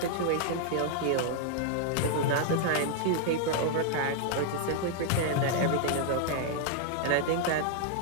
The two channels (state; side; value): different; both; correlation -0.01